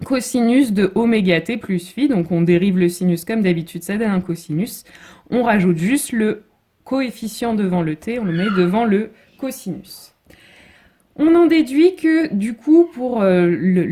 cosinus de oméga t plus phi. Donc on dérive le sinus comme d'habitude, ça donne un cosinus. On rajoute juste le coefficient devant le t, on le met devant le cosinus. On en déduit que, du coup, pour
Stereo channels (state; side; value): identical; both; correlation 1.00